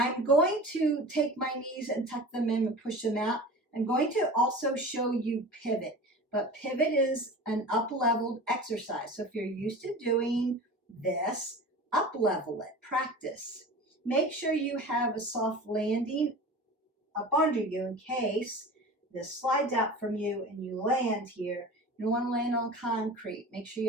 going to take my knees and tuck them in and push them out. I'm going to also show you pivot, but pivot is an up-leveled exercise. So if you're used to doing this, up-level it, practice. Make sure you have a soft landing up under you in case this slides out from you and you land here. You don't want to land on concrete. Make sure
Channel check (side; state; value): both; normal; correlation 0.35